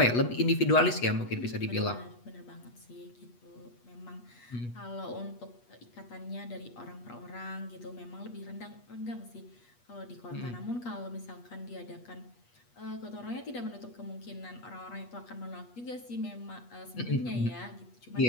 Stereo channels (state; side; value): late; right; 8.3 ms